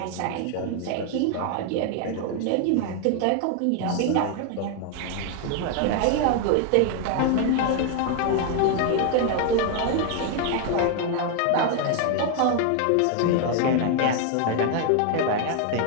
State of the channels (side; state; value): both; different; correlation 0.00